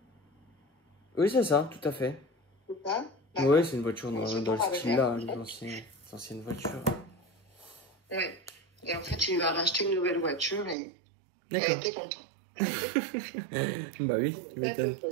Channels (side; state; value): left; drops out; at 10.8 s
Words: Oui, c'est ça, tout à fait. C'est ça? Oui, c'est une voiture dans le style-là, les anciennes voitures. Oui. Et en fait, il lui a racheté une nouvelle voiture et elle était contente. Bah oui, tu m'étonnes.